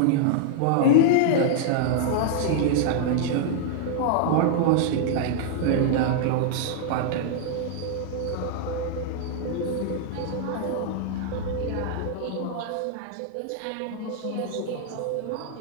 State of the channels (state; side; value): different; both; correlation -0.01